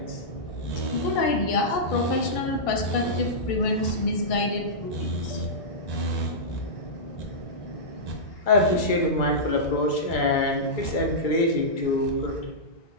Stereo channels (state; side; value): late; right; 2.3 ms